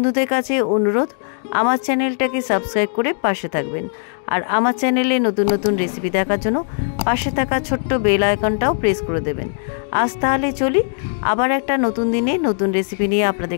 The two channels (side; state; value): right; silent; digital silence